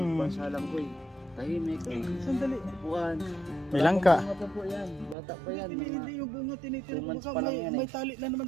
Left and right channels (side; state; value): left; drops out; at 5.2 s